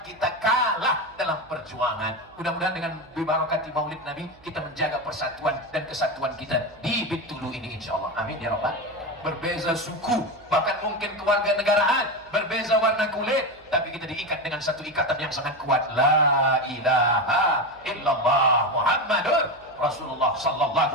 kita kalah dalam perjuangan. Mudah-mudahan dengan bibarakati maulid Nabi, kita menjaga persatuan dan kesatuan kita di Bintulu ini insyaAllah. Amin ya Rabbal. Berbeza suku, bahkan mungkin keluarga negaraan, berbeza warna kulit, tapi kita diikat dengan satu ikatan yang sangat kuat. La ilaha illallah. illallah Muhammadur Rasulullah sallallahu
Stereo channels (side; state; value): right; noise; hum, 27 dB below the sound